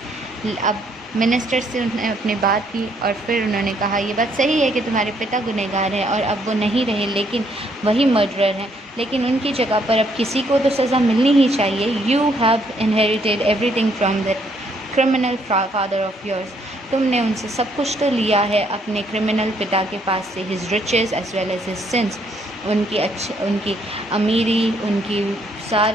अब minister से उन्होंने अपनी बात की और फिर उन्होंने कहा ये बात सही है कि तुम्हारे पिता गुनहगार हैं और अब वो नहीं रहे, लेकिन वही मर्डरर हैं, लेकिन उनकी जगह पर अब किसी को तो सज़ा मिलनी ही चाहिए. You have inherited everything from the criminal father of yours. तुमने उनसे सब कुछ तो लिया है अपने क्रिमिनल पिता के पास से. His riches as well as his sins. उनकी अमीरी, उनकी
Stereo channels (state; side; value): normal; both; correlation 0.69